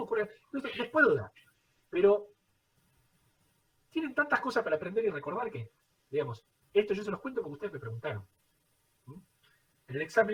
ocurre... Les puedo dar, pero tienen tantas cosas para aprender y recordar que, digamos, esto yo se los cuento porque ustedes me preguntaron. En el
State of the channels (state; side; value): identical; both; correlation 1.00